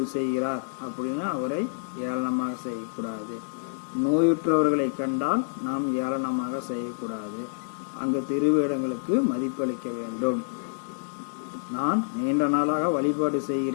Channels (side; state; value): right; silent; 60 dB below the other